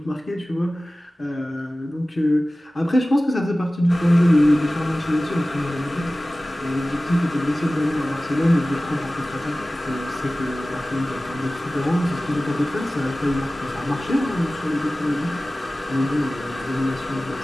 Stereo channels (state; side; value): normal; both; correlation 0.97